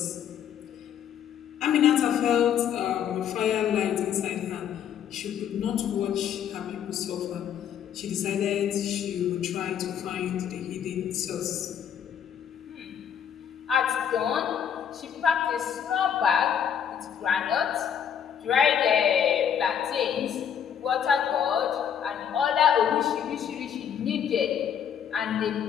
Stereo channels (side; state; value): right; quieter; 8.6 dB